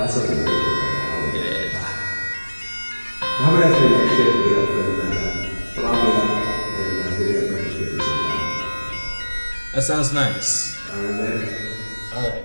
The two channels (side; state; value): both; inverted; correlation -1.00